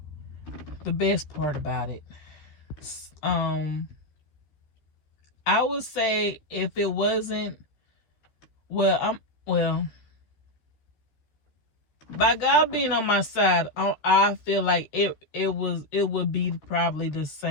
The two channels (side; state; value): right; late; 13 ms